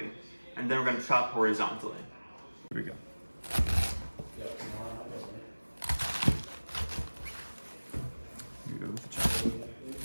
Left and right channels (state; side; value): inverted; both; correlation -1.00